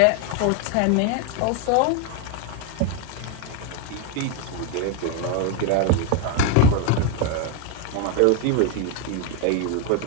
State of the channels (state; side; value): different; both; correlation 0.01